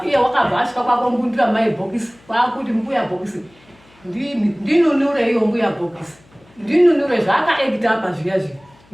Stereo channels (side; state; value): left; noise; hum, 29 dB below the sound